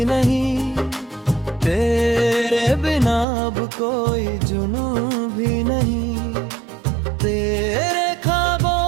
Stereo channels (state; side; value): drops out; left; at 3.2 s